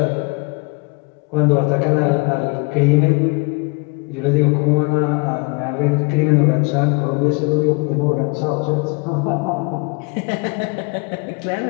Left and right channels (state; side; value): quieter; right; 30.2 dB